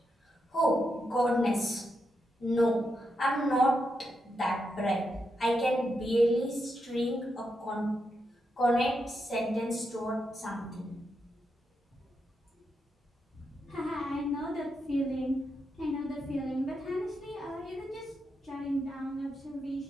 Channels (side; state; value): both; normal; correlation 0.84